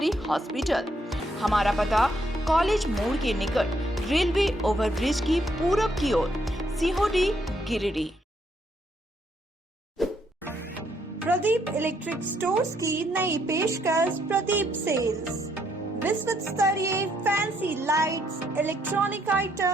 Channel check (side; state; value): both; normal; correlation 0.73